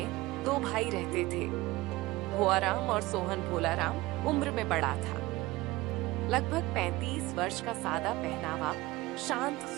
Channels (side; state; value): left; quieter; 19.6 dB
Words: दो भाई रहते थे। भुआराम और सोहन भोलाराम उम्र में बड़ा था। लगभग 35 वर्ष का सादा पहनावा, शांत